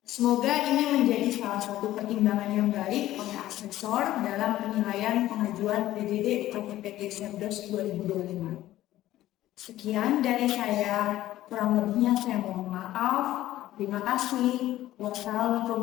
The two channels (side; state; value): right; quieter; 14.5 dB